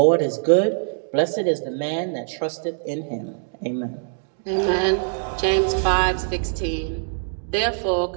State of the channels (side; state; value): left; silent; digital silence